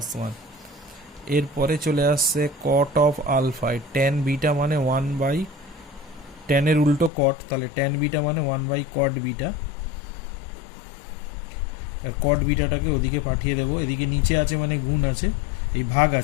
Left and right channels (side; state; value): right; drops out; at 7.1 s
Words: one. এরপরে চলে আসছে cot of alpha, tan beta মানে ওয়ান বাই টেনের উল্টো কট, তাহলে টেন বিটা মানে ওয়ান বাই কট বিটা। আর কট বিটাটাকে ওদিকে পাঠিয়ে দেবো, এদিকে নিচে আছে মানে গুণ আছে, এই ভাগ